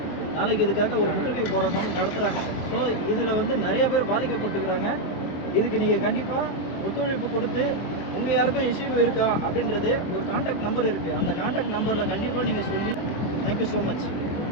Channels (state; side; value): late; right; 23 ms